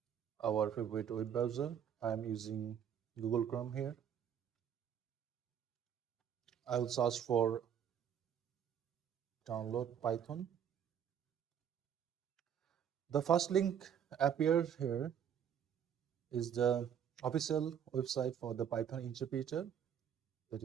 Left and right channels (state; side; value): quieter; left; 8.8 dB